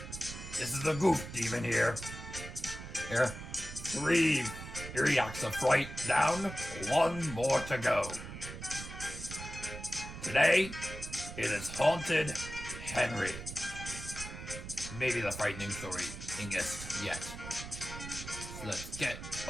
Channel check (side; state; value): right; noise; rumble, 10 dB below the sound